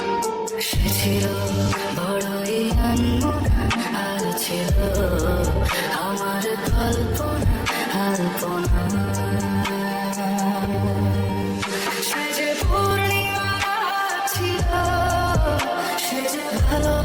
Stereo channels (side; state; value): both; identical; correlation 1.00